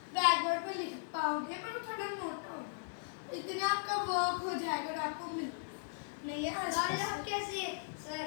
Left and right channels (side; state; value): right; silent; digital silence